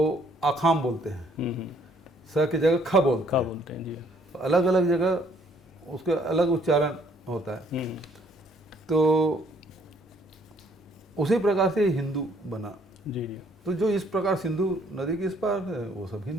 आखाम बोलते हैं, स की जगह ख बोलते खा हैं। बोलते हैं। जी तो अलग अलग जगह उसका अलग उच्चारण होता है। तो उसी प्रकार से हिंदू बना। जी जी तो जो इस प्रकार सिंधु नदी के इस पार है वो सब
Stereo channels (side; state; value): both; normal; correlation 0.64